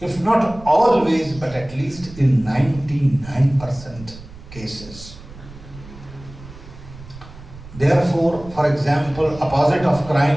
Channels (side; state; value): right; noise; rumble, 17 dB below the sound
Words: not always, but at least in 99% cases. Therefore, for example, opposite of